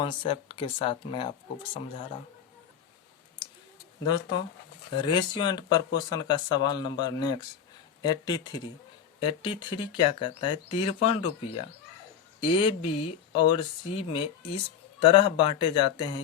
के साथ मैं आपको समझा रहा हूँ। दोस्तों रेशियो एंड प्रपोर्शन का सवाल नंबर नेक्स्ट 83 क्या कहता है, 53 रुपया ए बी और सी में इस तरह बांटे जाते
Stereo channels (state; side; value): quieter; right; 8.3 dB